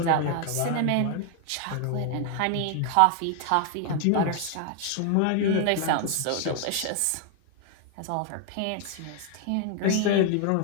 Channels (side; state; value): both; different; correlation 0.00